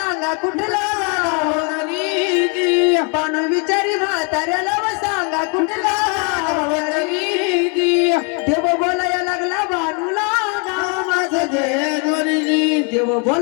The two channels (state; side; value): quieter; right; 34.2 dB